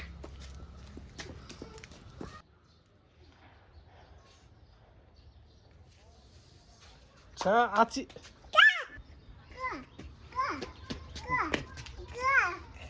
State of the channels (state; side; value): identical; both; correlation 1.00